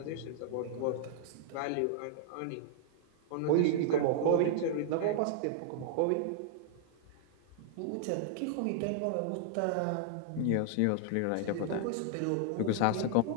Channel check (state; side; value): different; both; correlation -0.01